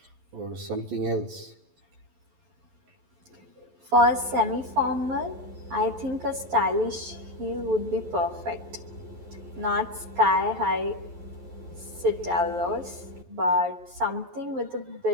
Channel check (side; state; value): left; late; 11 ms